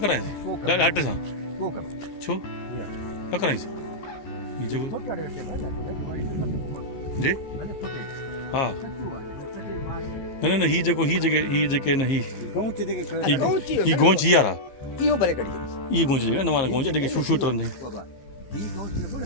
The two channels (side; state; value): right; late; 15 ms